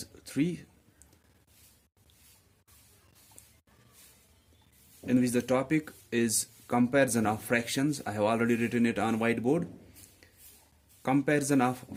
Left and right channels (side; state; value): both; identical; correlation 1.00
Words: 3, in which the topic is comparison of fractions. I have already written it on whiteboard. Comparison of